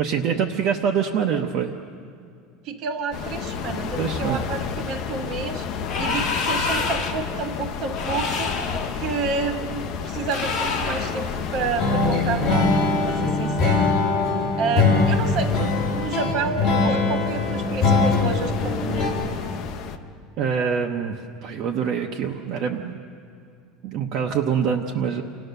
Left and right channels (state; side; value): normal; both; correlation 0.31